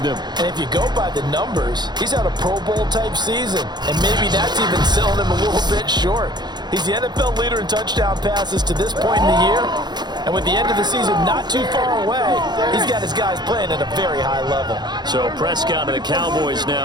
them. And if you go by the numbers, he's had a Pro Bowl type season, and maybe that's even selling him a little bit short. He's the NFL leader in touchdown passes to this point in the year, And with the end of the season not too far away, he's got his guys playing at a very high level. So Prescott and the Cowboys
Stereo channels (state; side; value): late; left; 0.21 ms